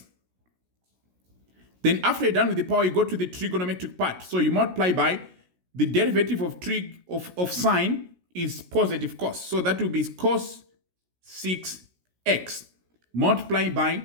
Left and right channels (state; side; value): late; left; 16 ms